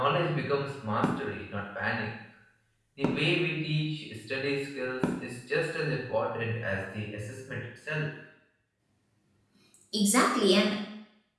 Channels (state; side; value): identical; both; correlation 1.00